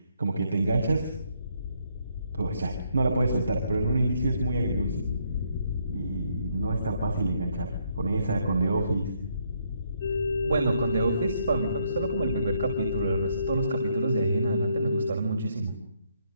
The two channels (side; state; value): both; inverted; correlation -0.73